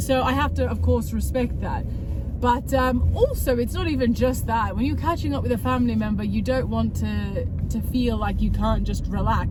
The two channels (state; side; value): identical; both; correlation 1.00